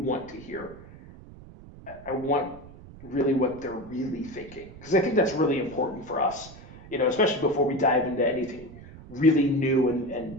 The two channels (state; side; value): noise; right; rumble, 18 dB below the sound